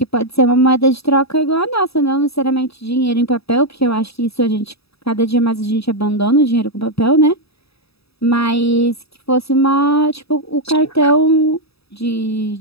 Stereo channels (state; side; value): late; right; 0.77 ms